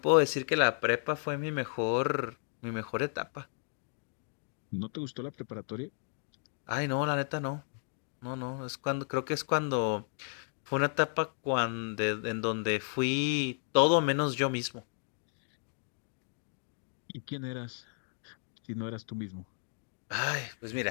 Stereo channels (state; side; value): silent; right; 55 dB below the other